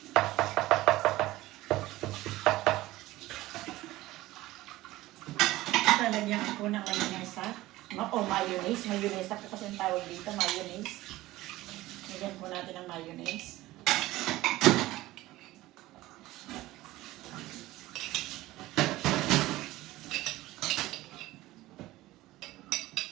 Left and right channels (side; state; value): left; quieter; 17.4 dB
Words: Lalagyan ko ng mayonnaise. Mayonnaise. Mayonnaise ako kasi ang tawag dito, mayonnaise. Lagyan po natin ng mayonnaise.